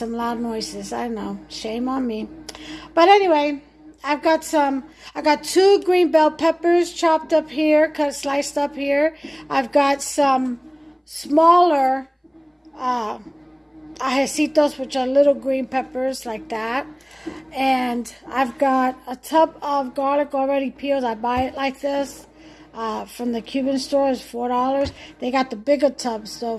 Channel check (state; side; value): identical; both; correlation 1.00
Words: loud noises. I know, shame on me. But anyway, I got two green bell peppers chopped up here, sliced up here. I've got some smaller ajecitos, which are little green peppers like that. And I've got a tub of garlic already peeled. I buy it like this from the Cuban store. It's $4. They got the bigger tubs though